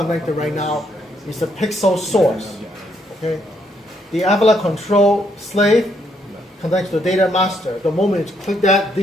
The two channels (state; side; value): normal; both; correlation 0.73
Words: right now is a pixel source. Okay? The Avila control slave connects to the data master. The moment you click that,